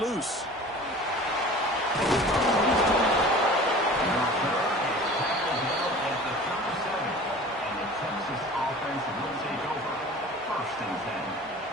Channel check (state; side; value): normal; both; correlation 0.41